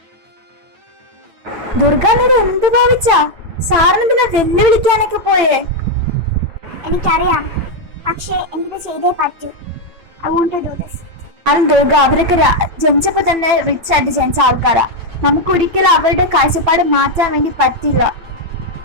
Durga, നീ എന്ത് ഭാവിച്ചാ? സാറിന് പിന്നെ വെല്ലുവിളിക്കാനൊക്കെ പോയേ? എനിക്കറിയാം, പക്ഷേ എനിക്കിത് ചെയ്തേ പറ്റൂ. I want to do this. കാരണം ദുർഗ, അവരൊക്കെ ജനിച്ചപ്പോ തന്നെ റിച്ച് ആയിട്ട് ജനിച്ച ആൾക്കാരാ. നമുക്ക് ഒരിക്കലും അവരുടെ കാഴ്ചപ്പാട് മാറ്റാൻ വേണ്ടി പറ്റില്ല.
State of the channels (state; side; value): late; left; 9.0 ms